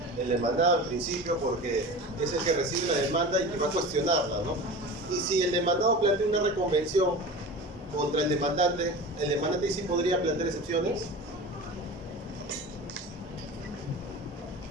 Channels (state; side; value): normal; both; correlation 0.33